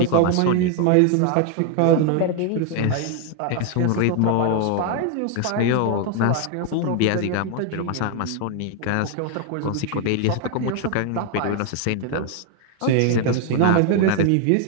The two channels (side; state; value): both; different; correlation 0.00